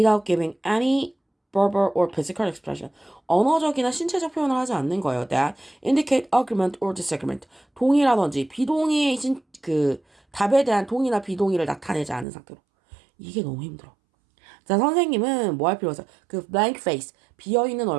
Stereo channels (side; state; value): left; drops out; at 12.2 s